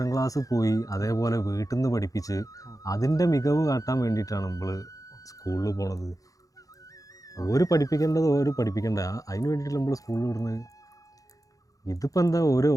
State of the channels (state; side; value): late; right; 0.17 ms